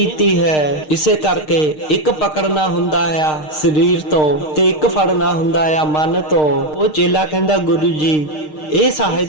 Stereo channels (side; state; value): right; late; 6.5 ms